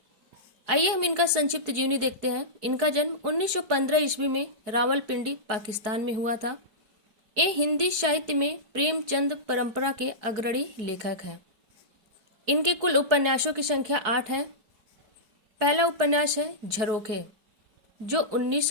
आइए हम इनका संक्षिप्त जीवनी देखते हैं। इनका जन्म 1915 ईस्वी में रावलपिंडी, पाकिस्तान में हुआ था। ये हिंदी साहित्य में प्रेमचंद परंपरा के अग्रणी लेखक हैं। इनके कुल उपन्यासों की संख्या 8 है। पहला उपन्यास है झरोखे, जो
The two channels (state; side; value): late; left; 4.7 ms